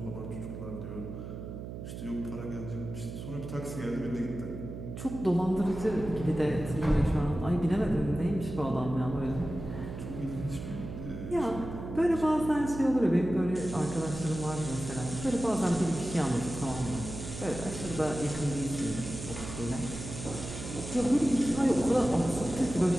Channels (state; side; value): noise; right; hum, 9 dB below the sound